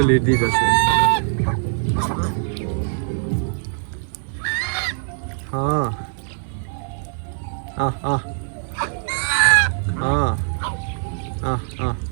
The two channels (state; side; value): silent; left; digital silence